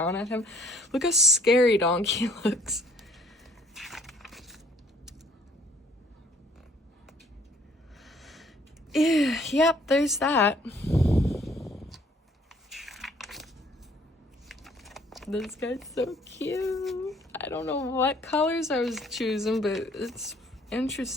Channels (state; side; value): normal; both; correlation 0.59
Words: at him. Look how scary Donkey looks. Yep, there's that. This guy's so cute. I don't know what colors I was choosing, but it's